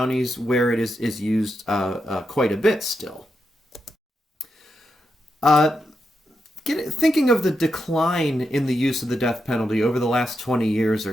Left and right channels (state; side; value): normal; both; correlation 0.85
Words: where it is used quite a bit still. Thinking of the decline in the use of the death penalty over the last 20 years